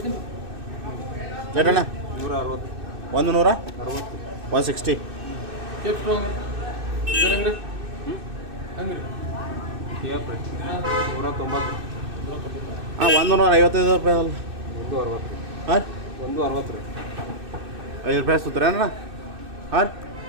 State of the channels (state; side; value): late; left; 2.6 ms